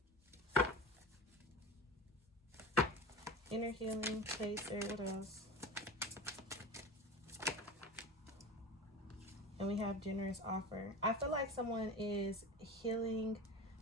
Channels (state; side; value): normal; both; correlation 0.31